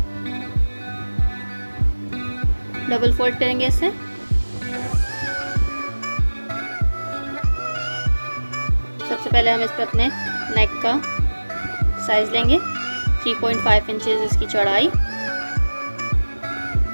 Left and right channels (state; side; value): inverted; both; correlation -1.00